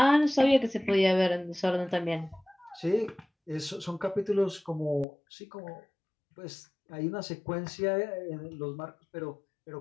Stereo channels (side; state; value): right; drops out; at 5.1 s